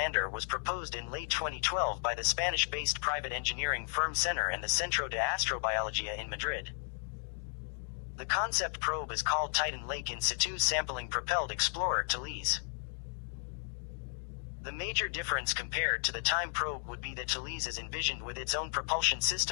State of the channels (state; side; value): silent; right; 55 dB below the other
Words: was proposed in late 2012 by the Spanish-based private engineering firm Centre and the Centro de Astrobiología in Madrid. The concept probe is called Titan Lake In Situ Sampling Propelled Explorer Thales. The major difference compared to the TIME probe would be that Thales is envisioned with its own propulsion